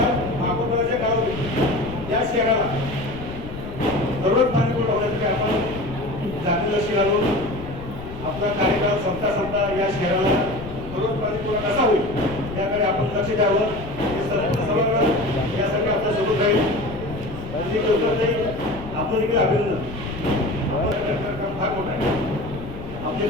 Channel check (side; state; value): left; noise; rumble, 11 dB below the sound